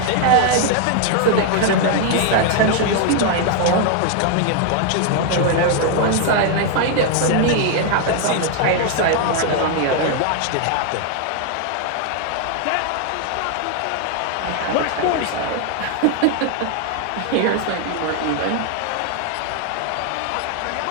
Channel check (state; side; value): different; both; correlation 0.00